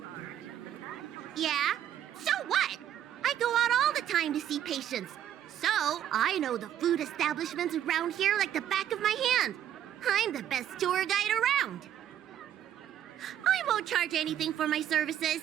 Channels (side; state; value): left; quieter; 10.7 dB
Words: Yeah? So what? I go out all the time to see patients. So I know the food establishments around here like the back of my hand. I'm the best tour guide around. I won't charge anything for my